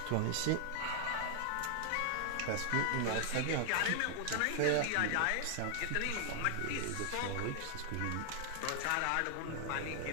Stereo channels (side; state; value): both; different; correlation 0.00